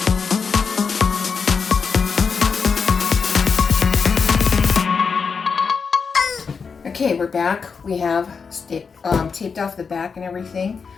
Okay, we're back. We have taped off the back and everything.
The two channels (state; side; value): quieter; right; 5.5 dB